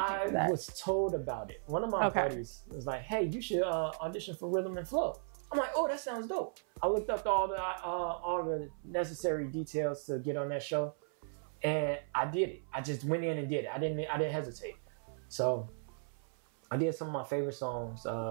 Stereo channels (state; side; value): silent; left; 54 dB below the other